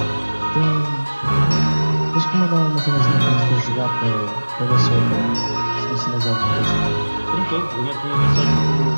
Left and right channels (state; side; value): inverted; both; correlation -1.00